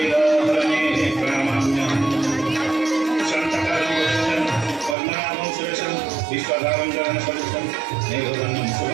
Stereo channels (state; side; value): drops out; left; at 5.0 s